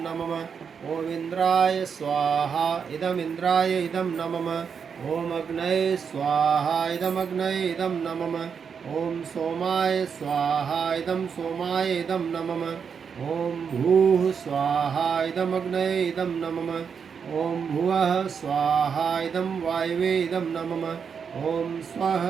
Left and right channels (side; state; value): left; quieter; 6.6 dB